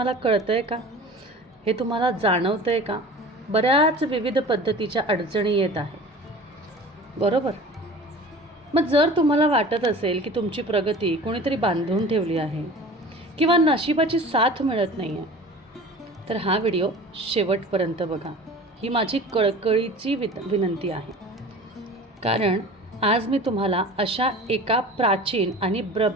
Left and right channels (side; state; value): both; normal; correlation 0.39